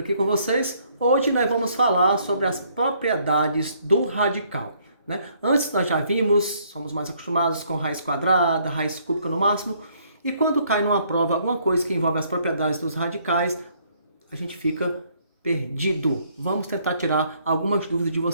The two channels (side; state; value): both; inverted; correlation -0.66